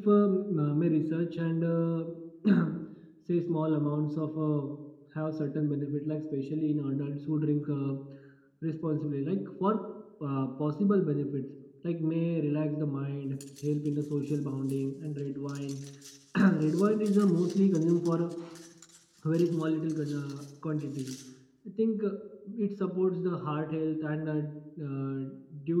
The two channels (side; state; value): both; identical; correlation 1.00